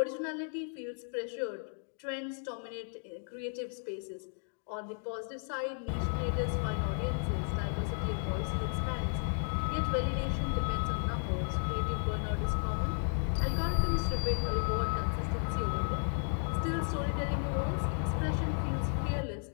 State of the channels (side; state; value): right; silent; 55 dB below the other